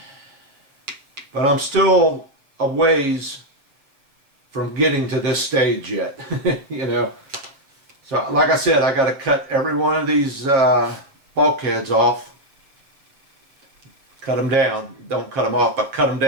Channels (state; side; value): late; left; 7.3 ms